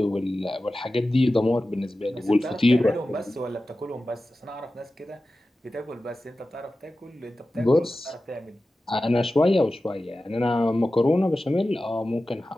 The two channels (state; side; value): normal; both; correlation 0.94